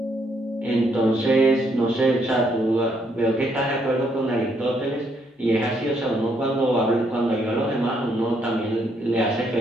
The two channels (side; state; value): both; normal; correlation 0.73